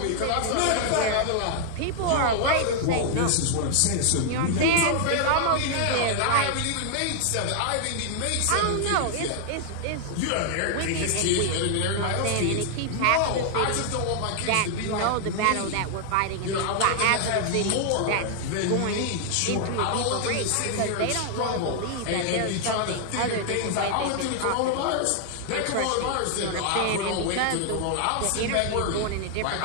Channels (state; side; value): different; both; correlation 0.00